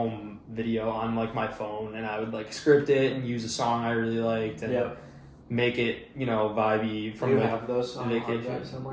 video on like my phone, and I would like script it and use a song I really liked and make it vibey from. Do you like, have those on vacation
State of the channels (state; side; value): identical; both; correlation 1.00